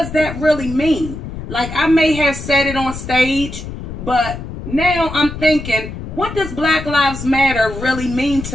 that really mean? Like, I may have said it on stage, but now I'm thinking, what does Black Lives Matter really mean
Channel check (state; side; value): noise; left; rumble, 9 dB below the sound